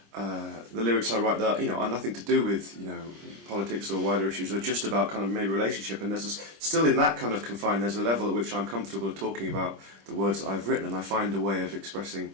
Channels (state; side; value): late; left; 25 ms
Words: lyrics I write that are nothing to do with politics or wider issues, or just about kind of maybe relationship. And there's still in that kind of confine, there's a level at which I'm comfortable talking about the words that I've written, and I find a way of expressing